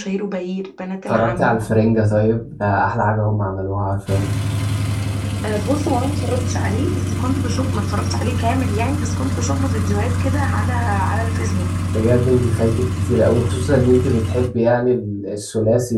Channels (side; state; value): both; identical; correlation 1.00